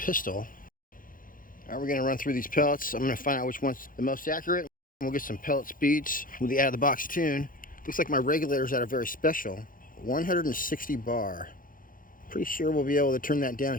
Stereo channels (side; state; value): right; late; 0.40 ms